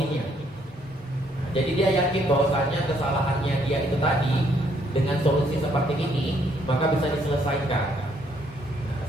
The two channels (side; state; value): both; normal; correlation 0.69